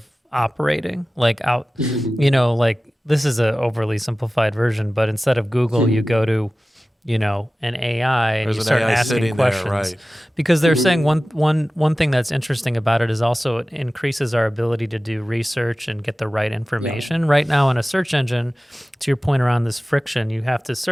operating? Like out, like this is a overly simplified version, but instead of Google, you go to, an AI and There's you an start AI asking sitting questions. there, right. Because they're saying one thing that's interesting about it is also it increases our ability to do research and get the right information. Right now in a search engine, to your point around this friction, you have to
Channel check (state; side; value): normal; both; correlation 0.96